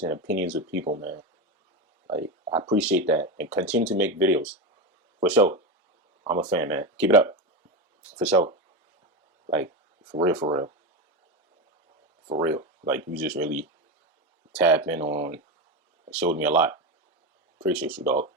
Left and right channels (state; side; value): normal; both; correlation 0.16